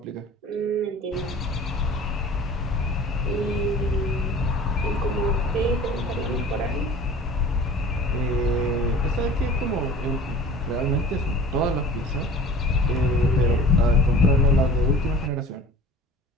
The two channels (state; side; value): normal; both; correlation 0.42